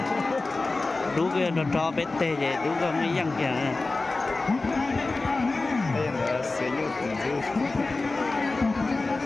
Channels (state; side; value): quieter; right; 3.4 dB